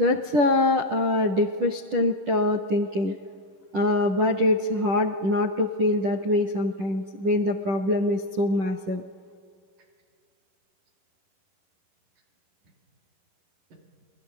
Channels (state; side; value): late; left; 10 ms